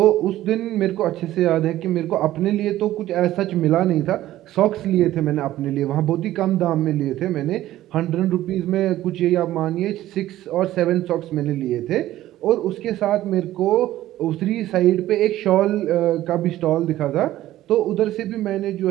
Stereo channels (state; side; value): quieter; left; 14.4 dB